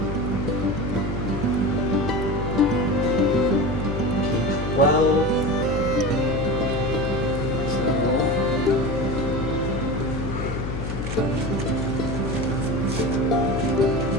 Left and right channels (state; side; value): noise; left; hum, 4 dB below the sound